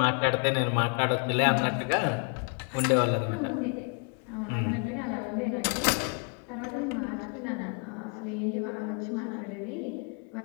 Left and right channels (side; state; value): right; quieter; 38.0 dB